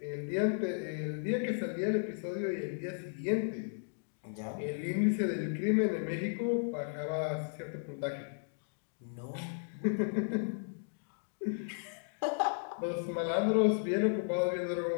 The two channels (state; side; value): silent; right; digital silence